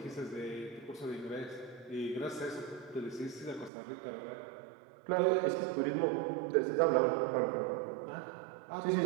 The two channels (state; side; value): drops out; left; at 3.7 s